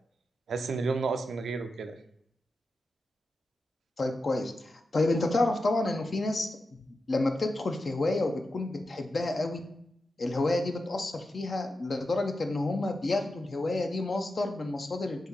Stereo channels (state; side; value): normal; both; correlation 0.90